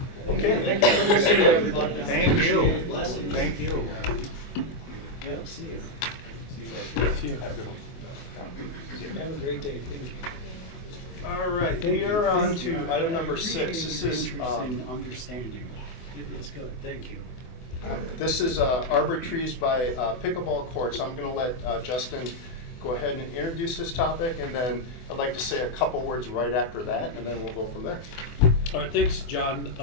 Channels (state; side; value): late; right; 24 ms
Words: Okay. Thank you for listening, everybody. Thank you. Appreciate it. Blessings. Thank you. Yep, see you. See you. Have a good one. Have a great day. Thank you. All right, we are on to item number 6. This is, Understanding. It's good, thank you. Arbor Trees by Pickleball Courts. I'm going to let Justin go ahead and introduce this topic, and then I'd like to say a couple words right after that, and then we'll go from there. All right, thanks, John.